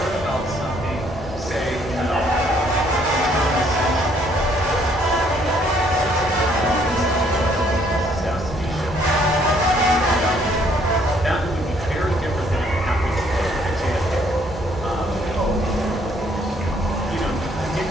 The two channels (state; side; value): normal; both; correlation 0.65